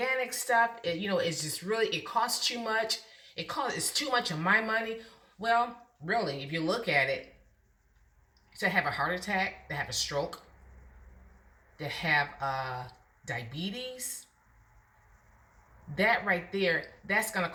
stuff, is just really, it costs too much. It's too much of my money. Well, really, if you look at it, to have a heart attack, to have a stroke, to have diabetes, that right there, that's going to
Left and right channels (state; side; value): identical; both; correlation 1.00